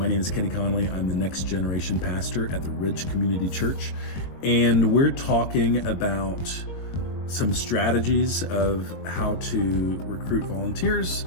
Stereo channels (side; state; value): right; late; 21 ms